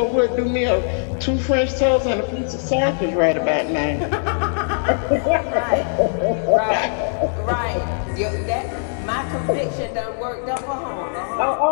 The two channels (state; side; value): silent; right; digital silence